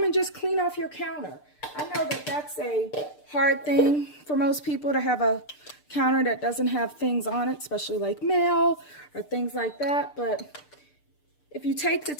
and just clean off your counter. I know that that's a hard thing for most people to have a counter that doesn't have things on it, especially like mail or things like that. But if you take the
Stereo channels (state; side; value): late; right; 6.7 ms